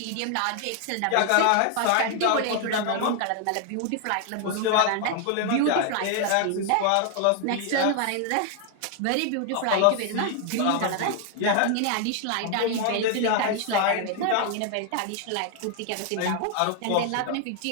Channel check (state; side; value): different; both; correlation 0.00